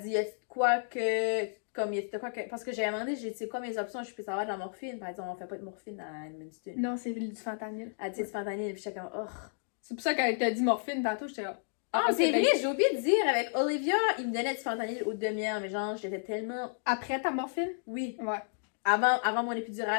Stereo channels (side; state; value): right; silent; digital silence